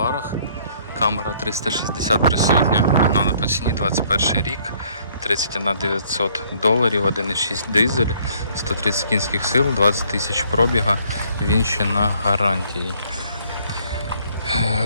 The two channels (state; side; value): inverted; both; correlation -0.62